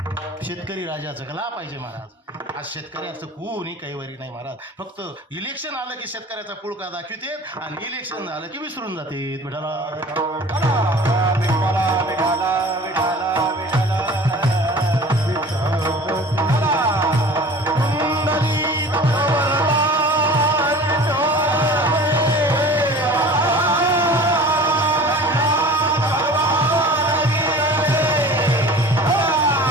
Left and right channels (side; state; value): both; normal; correlation 0.42